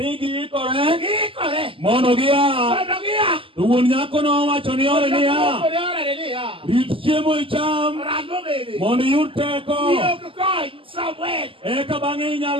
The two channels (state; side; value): late; left; 0.26 ms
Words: giikore mondo gia. To wuon nyako nowacho ni ore niya. Rit chiemo icham mondo iyud teko. Eka bang'e